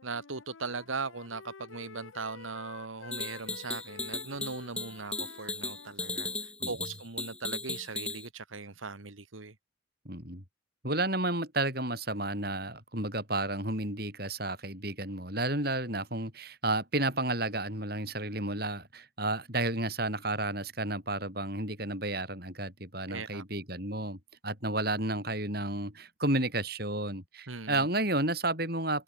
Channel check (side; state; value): both; normal; correlation 0.06